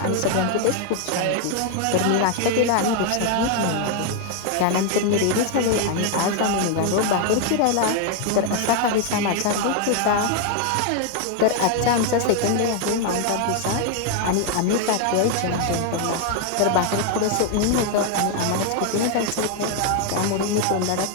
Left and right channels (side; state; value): both; different; correlation 0.01